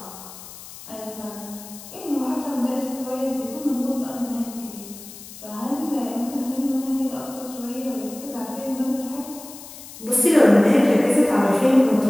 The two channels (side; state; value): left; noise; hiss, 16 dB below the sound